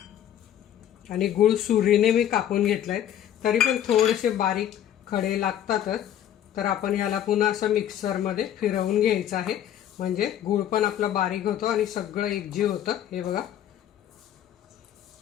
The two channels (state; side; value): quieter; right; 10.9 dB